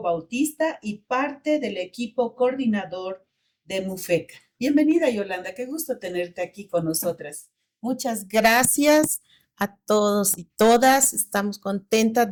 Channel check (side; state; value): both; identical; correlation 1.00